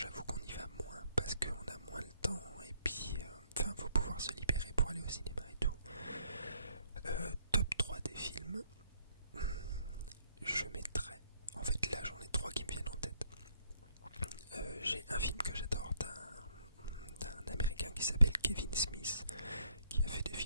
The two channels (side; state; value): both; inverted; correlation -0.69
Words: qu'on y va moins parce qu'on a moins le temps et puis faut pouvoir se libérer pour aller au cinéma et tout. Top 3 des films, je mettrais, en fait là j'en ai 3 qui me viennent en tête. J'ai un film que j'adore d'un américain qui s'appelle Kevin Smith, qui a fait des